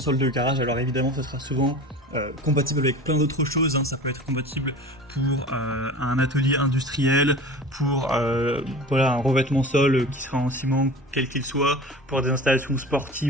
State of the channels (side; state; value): both; normal; correlation 0.37